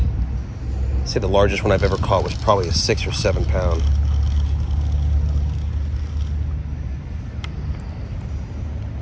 I'd say the largest one I've ever caught was probably a 6 or 7 pound.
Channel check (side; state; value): both; identical; correlation 1.00